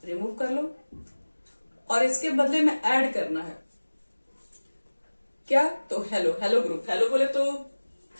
रिमूव कर लो और इसके बदले में ऐड करना है क्या, तो हेलो, हेलो ग्रुप। हेलो बोले तो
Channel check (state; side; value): inverted; both; correlation -1.00